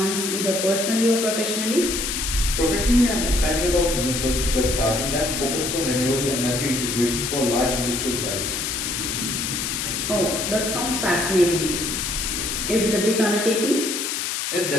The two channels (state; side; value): noise; left; hiss, 2 dB below the sound